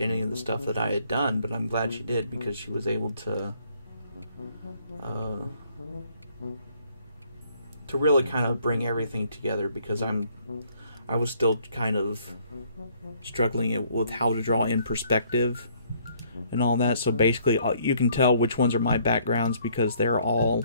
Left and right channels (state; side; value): inverted; both; correlation -0.64